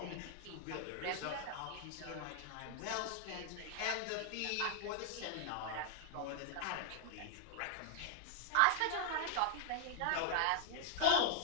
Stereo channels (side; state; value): both; different; correlation 0.00